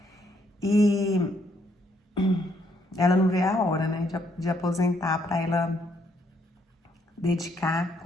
E ela não vê a hora, né, de aposentar para ela dedicar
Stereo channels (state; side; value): normal; both; correlation 0.71